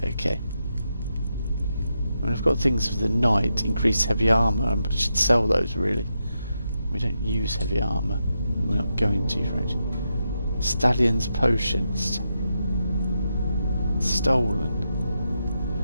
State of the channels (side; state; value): both; inverted; correlation -0.85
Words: Okay. I mean, I've got things for the knight, increase heavy armor. I should sell those really. We don't use heavy armor. We're not going to, right? Stallion's potions. Stolen.